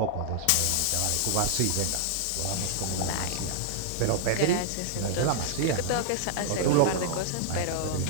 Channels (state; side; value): different; both; correlation -0.01